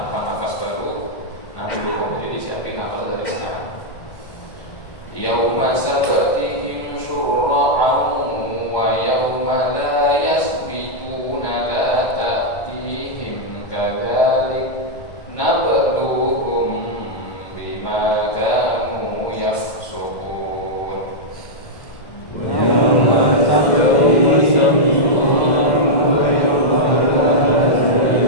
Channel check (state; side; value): late; right; 1.1 ms